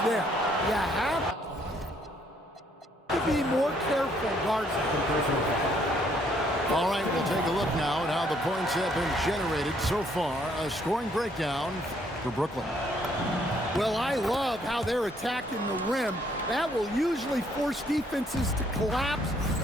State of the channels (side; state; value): both; normal; correlation 0.67